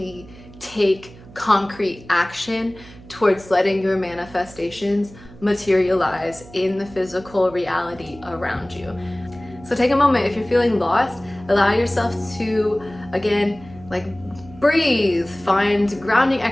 take concrete action towards letting your manifestations materialize in the physical reality around you. So take a moment. If you're feeling lost, allow yourself to, again, like, breathe, find grounding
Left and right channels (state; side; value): noise; right; hum, 20 dB below the sound